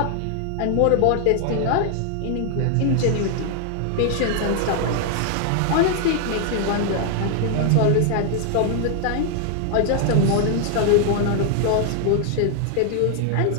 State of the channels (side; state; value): both; different; correlation 0.00